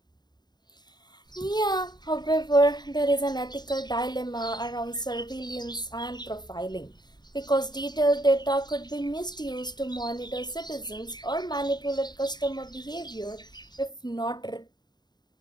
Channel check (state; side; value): late; right; 0.20 ms